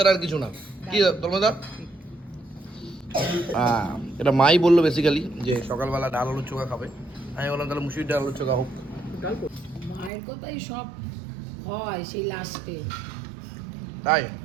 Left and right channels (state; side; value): drops out; left; at 10.1 s